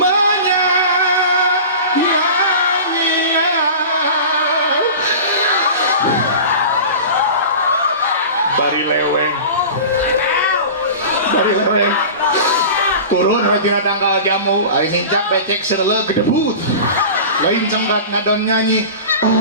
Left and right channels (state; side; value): inverted; both; correlation -0.34